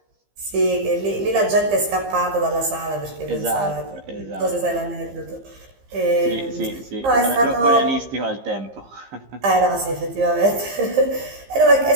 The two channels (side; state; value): left; late; 15 ms